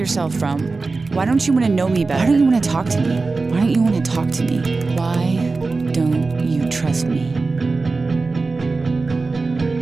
from? Why don't you want to know me better? Why don't you want to talk to me? Why don't you want to talk to me? Why don't you trust me?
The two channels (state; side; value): quieter; left; 3.8 dB